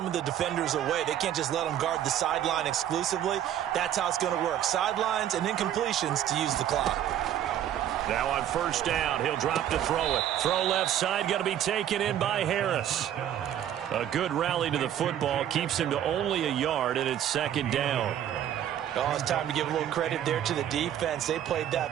of the defenders away. They can't just let them guard the sideline exclusively. That's how it's going to work. Sidelines and incompletions to use the clock. Now on first down, he'll drop to throw it. Throw left side, going to be taken in by Harris. A good rally to the football keeps him to only a yard, and it's second down. Oh, it's time to give a little credit there to the defense. They played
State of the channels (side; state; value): left; quieter; 10.8 dB